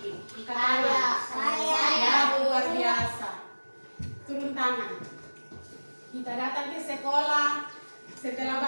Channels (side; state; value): both; inverted; correlation -1.00